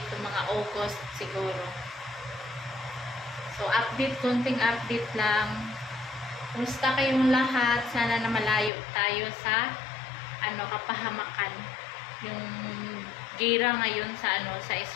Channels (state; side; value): drops out; right; at 8.7 s